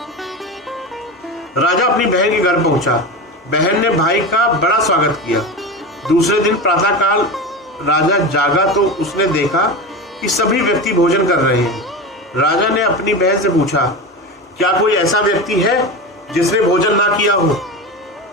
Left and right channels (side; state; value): both; normal; correlation 0.24